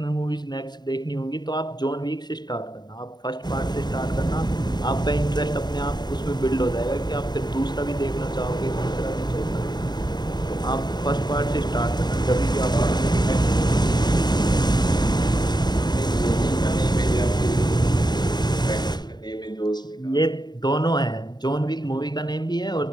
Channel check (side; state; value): right; late; 0.20 ms